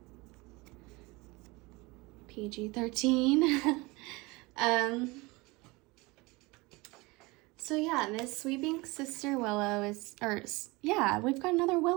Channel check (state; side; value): quieter; left; 24.1 dB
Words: PG-13. So yeah, this Sweeping Sister Willow is, we've got another